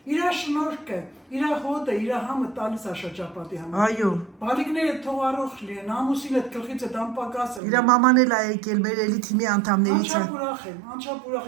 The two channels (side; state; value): left; drops out; at 7.6 s